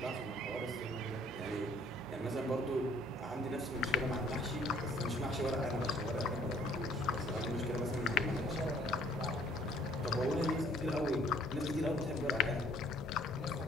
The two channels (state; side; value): normal; both; correlation 0.59